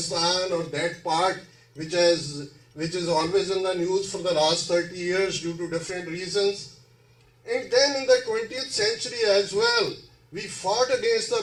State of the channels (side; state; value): both; identical; correlation 1.00